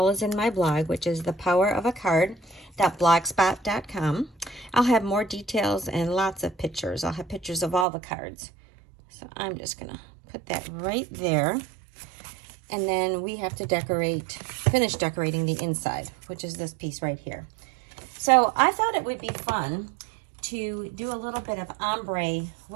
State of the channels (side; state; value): left; drops out; at 7.9 s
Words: as in my blog, which is thepowerofacard.blogspot.com. I'll have more details and lots of pictures. I'll have pictures of all the cards. So I'm just going to put that right there. And then we have to finish decorating the inside, which is this piece right here. So I thought it would be fun to do a little bit of ombre